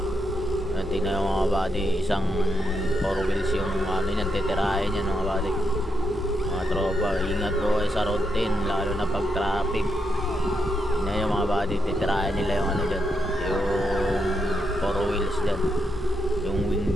Tingnan yung mga buddy, isang 4 wheels yung ano yan, titirahin yan mga buddy. Mga tropa, ingat po kayo sa road 10, lalo na pag traffic. Tingnan yung mga buddy, titirahin nila yung ano dyan, yung 4 wheels dyan, yung wing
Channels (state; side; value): normal; both; correlation 0.82